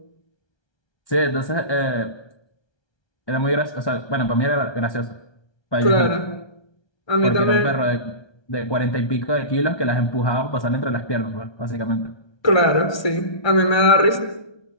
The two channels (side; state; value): right; late; 1.2 ms